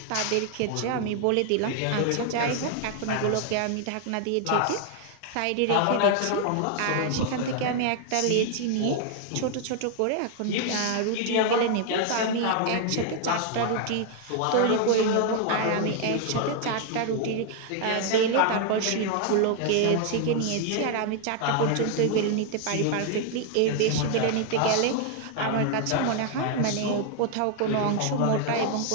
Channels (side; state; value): both; different; correlation 0.00